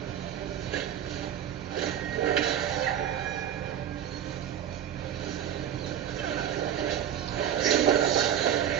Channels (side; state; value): left; quieter; 10.0 dB